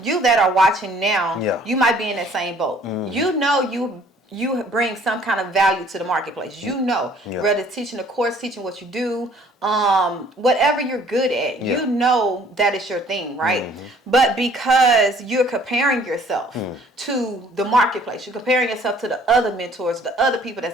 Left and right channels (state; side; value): normal; both; correlation 0.57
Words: you that are watching now, Yeah. you might be in that same boat. You know you bring some kind of value to the marketplace. You know, whether it's teaching a course, teaching what you do, whatever you're good at, you know that is your thing, right? But because you're comparing yourself to the marketplace, you're comparing yourself to the other mentors, the other people